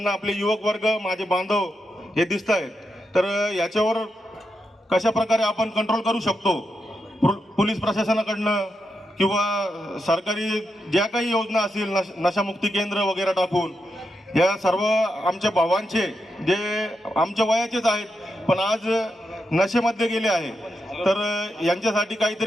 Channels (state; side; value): normal; both; correlation 0.85